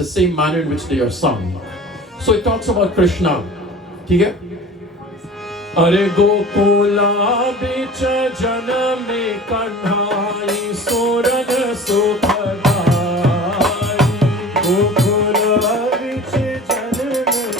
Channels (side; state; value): both; normal; correlation 0.40